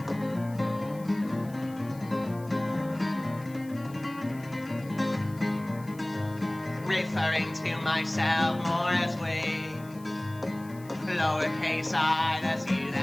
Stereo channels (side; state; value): left; noise; hiss, 23 dB below the sound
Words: Referring to myself more as we, lowercase I, that's you,